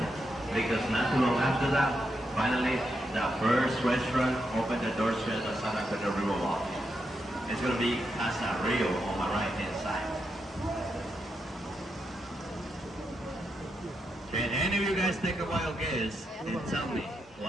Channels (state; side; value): normal; both; correlation 0.83